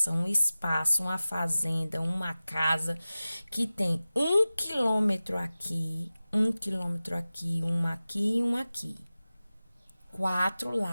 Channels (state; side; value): inverted; both; correlation -0.96